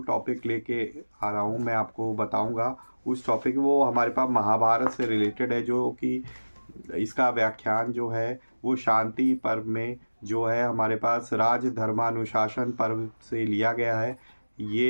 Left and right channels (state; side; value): inverted; both; correlation -1.00